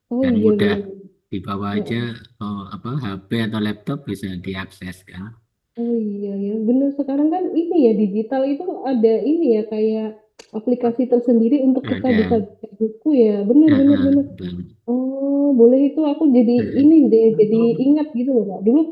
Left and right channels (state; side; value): identical; both; correlation 1.00